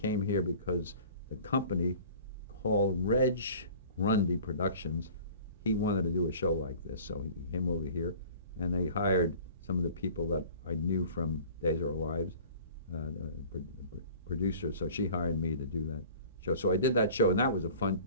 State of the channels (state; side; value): inverted; both; correlation -0.45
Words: here because the company called Reg Grundy Productions, he wanted to do a show like this, so he came over here, and they hired some of the people that I knew from Days of Our Lives, producer. So she hired me to do that show. So I did that show, and that was